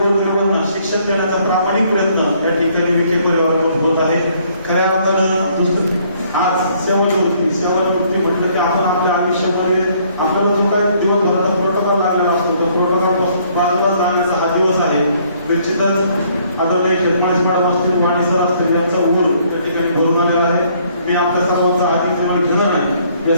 शिक्षण देण्याचा प्रामाणिक प्रयत्न या ठिकाणी विखे परिवाराकडून होत आहे. खऱ्या अर्थानं आज सेवानिवृत्ती म्हटलं की आपण आपल्या आयुष्यामध्ये आपल्याला जो काय दिवसभराचा प्रोटोकॉल लागलेला असतो त्या प्रोटोकॉल बाजूला जाण्याचा हा दिवस आहे. निश्चितच आदरणीय खेतमाळी मॅडम असतील, वाणी सर असतील यांचा उघड त्या ठिकाणी भरून आलेला आहे. मी आपल्या सर्वांचा आधीच घेणार नाही.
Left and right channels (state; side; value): inverted; both; correlation -0.64